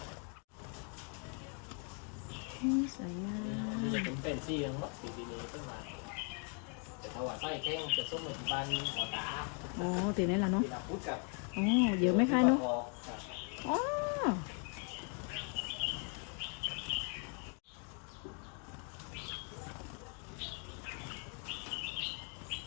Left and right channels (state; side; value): quieter; right; 39.8 dB